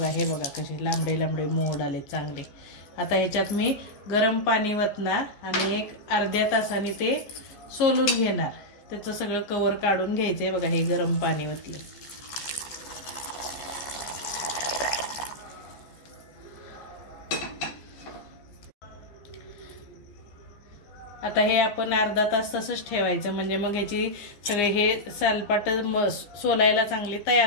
हे बघा कसे लांबडे लांबडे मोड आलेत चांगले। आता ह्याच्यात मी गरम पाणी वतणार आणि एक अर्ध्या तासाने ते सोलून घेणार। त्याचं सगळं कवर काढून घ्यायचंय। बघा, हे गरम पाणी वतले। आता हे आपण अर्धा तास तसंच ठेवायचं, म्हणजे मग ह्याची सगळे हे सालपाट सोलायला चांगले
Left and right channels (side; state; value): right; late; 15 ms